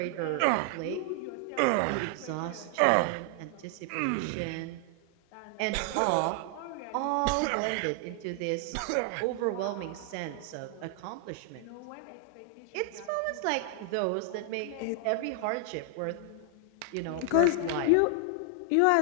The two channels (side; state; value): both; different; correlation 0.00